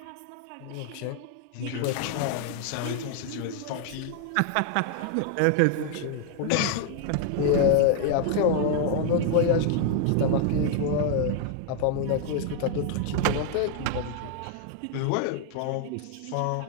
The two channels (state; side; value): different; both; correlation 0.00